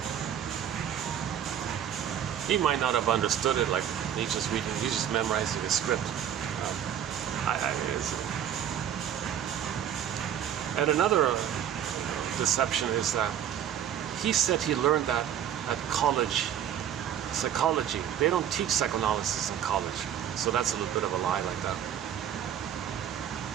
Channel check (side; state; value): left; quieter; 9.7 dB